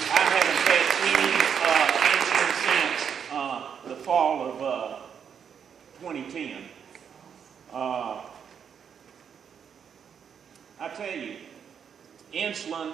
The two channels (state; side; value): quieter; left; 7.6 dB